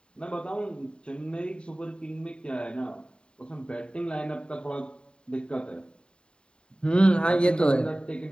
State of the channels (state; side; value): late; right; 0.051 ms